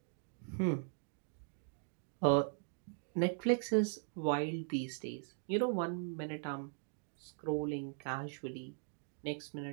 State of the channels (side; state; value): left; silent; digital silence